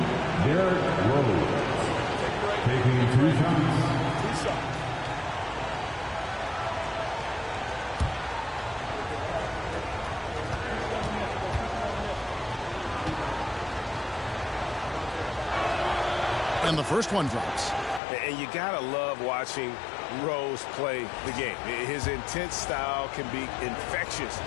Derrick Rose, taking 2 shots. And the first one drops. And you got to love watching Rose play the game. His intense style can be infectious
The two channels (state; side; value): drops out; right; at 18.0 s